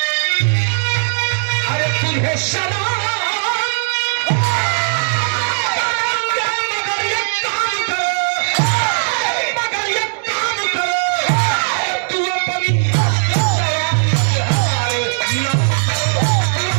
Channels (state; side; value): silent; left; digital silence